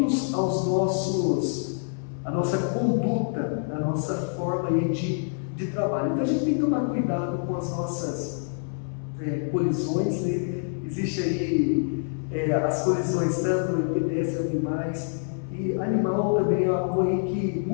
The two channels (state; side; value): silent; right; 57 dB below the other